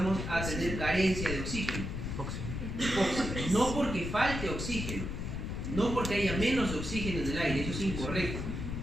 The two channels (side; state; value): left; noise; rumble, 4 dB below the sound